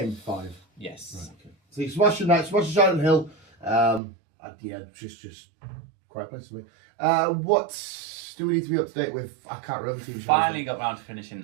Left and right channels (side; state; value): left; drops out; at 4.0 s